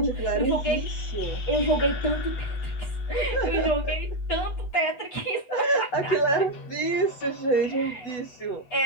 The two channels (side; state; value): right; late; 8.1 ms